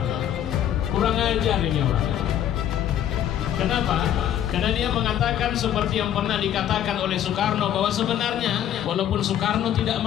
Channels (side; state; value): right; quieter; 10.6 dB